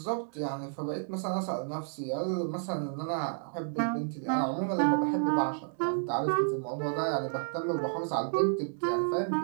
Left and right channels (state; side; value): silent; left; digital silence